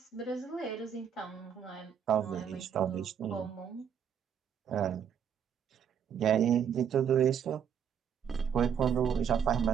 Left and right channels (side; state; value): left; quieter; 8.1 dB